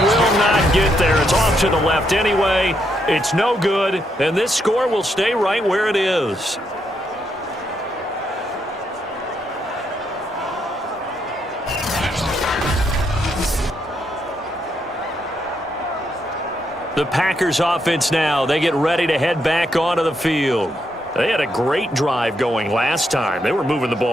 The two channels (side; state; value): both; normal; correlation 0.78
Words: will not get there. It's off to the left anyway. It's no good. And this score will stay right where it is. The Packers offense now, they get ready to head back onto the field. They had a great drive going last time. They were moving the